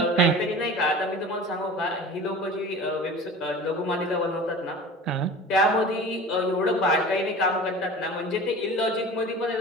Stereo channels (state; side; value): normal; both; correlation 0.38